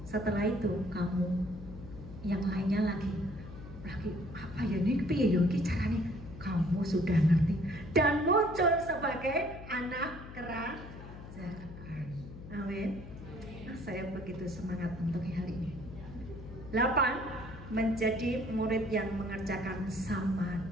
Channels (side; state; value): left; noise; hum, 13 dB below the sound